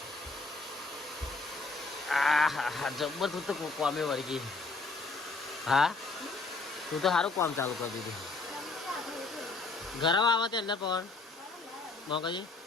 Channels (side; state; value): right; quieter; 3.7 dB